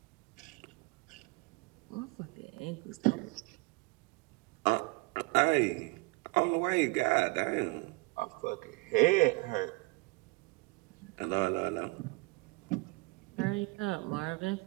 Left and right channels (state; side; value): quieter; left; 26.5 dB